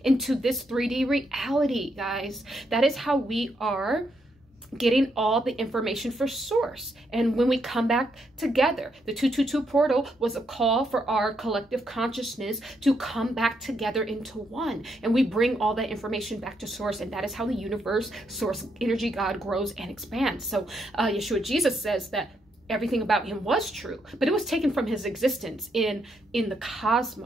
into this 3D reality, guys. That is how we are getting all the information for source. And when we come back together, the 222 portal was a call for our collective consciousness to come back together into one. And we bring all that information back to source. And that is how the universe, source, energy, God grows and expands. So Yahshua Jesus says that everything about him was true, but it was taken from his existence in the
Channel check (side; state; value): both; normal; correlation 0.78